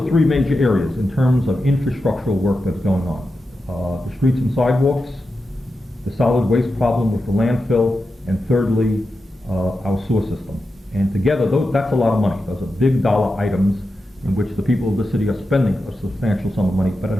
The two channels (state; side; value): normal; both; correlation 0.90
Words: the three major areas in terms of infrastructural work that's going on. The streets and sidewalks, the solid waste problem with the landfill, and thirdly, our sewer system. And together, that's a lot of money. Those are big dollar items in which the people of the city are spending a substantial sum of money, but it